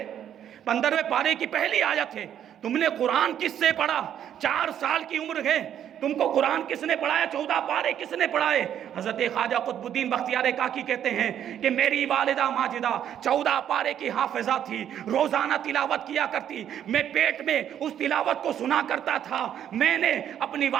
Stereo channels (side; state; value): left; quieter; 10.0 dB